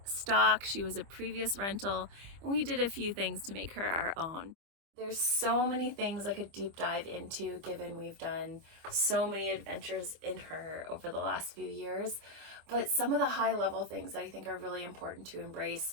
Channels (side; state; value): left; late; 25 ms